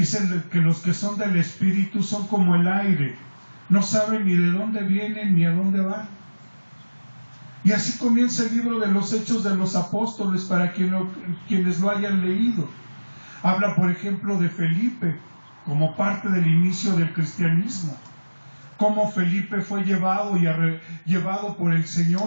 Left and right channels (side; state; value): both; inverted; correlation -1.00